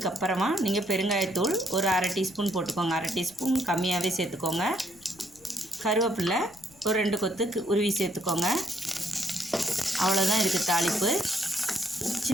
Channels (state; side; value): noise; left; rumble, 27 dB below the sound